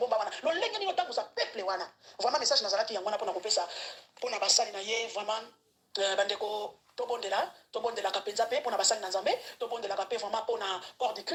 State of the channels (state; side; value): identical; both; correlation 1.00